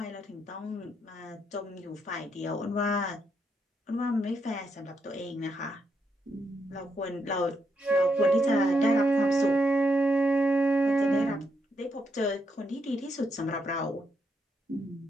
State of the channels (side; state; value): both; normal; correlation 0.79